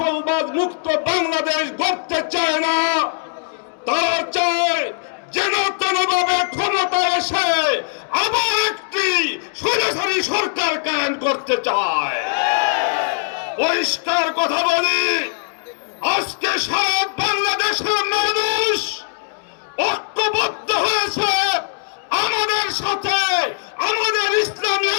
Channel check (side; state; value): right; silent; digital silence